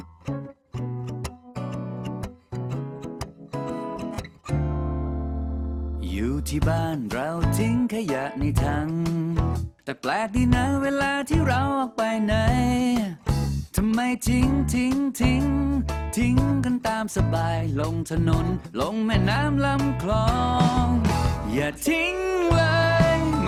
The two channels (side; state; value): both; identical; correlation 1.00